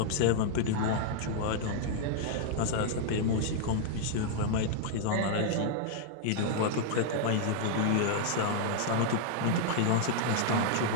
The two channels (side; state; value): both; different; correlation 0.00